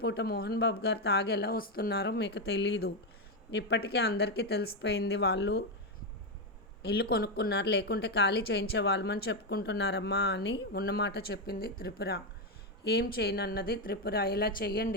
మోహన్ బాబు గారు తాగి ఎలా వస్తున్నారో మీకు తెలీదు. ఇప్పటికే అందరికీ తెలిసిపోయింది. వాళ్ళు ఇల్లు కొనుక్కున్నారు, లేకుంటే ఖాళీ చేయించేవాళ్ళమని చెప్పుకుంటున్నారమ్మా అని ఉన్నమాట చెప్పింది త్రిపుర. ఏం చేయనన్నది త్రిపుర. ఇలా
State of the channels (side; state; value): both; normal; correlation 0.06